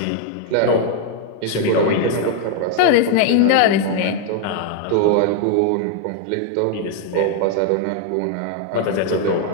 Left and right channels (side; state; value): both; different; correlation 0.00